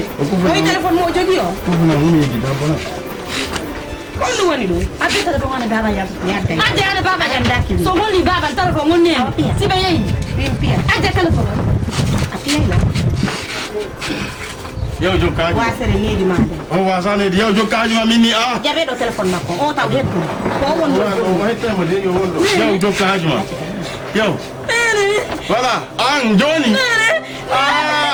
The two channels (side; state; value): both; identical; correlation 1.00